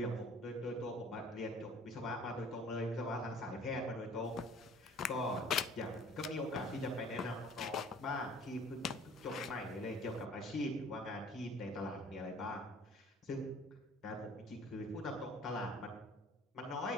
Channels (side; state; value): both; normal; correlation 0.51